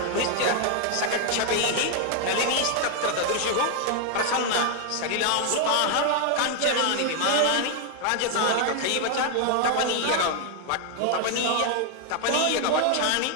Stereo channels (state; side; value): different; both; correlation 0.00